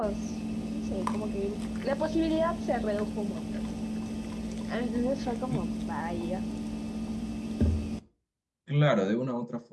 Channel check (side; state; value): both; identical; correlation 1.00